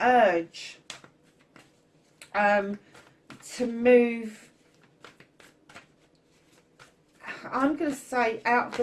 to move, I'm going to say, out of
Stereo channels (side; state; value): both; identical; correlation 1.00